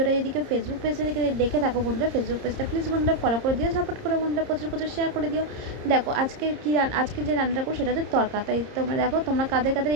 যদি কেউ ফেসবুক পেজে থেকে দেখে থাকো বন্ধুরা, ফেসবুক পেজটা প্লিজ বন্ধুরা ফলো করে দিও, সাপোর্ট করে বন্ধুরা প্রচুর প্রচুর শেয়ার করে দিও। দেখো আজকে যে রান্নাটা করো সেটা হচ্ছে তড়কা। তাই তোমরা দেখো তোমরা কাদের কাদের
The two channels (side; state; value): left; late; 30 ms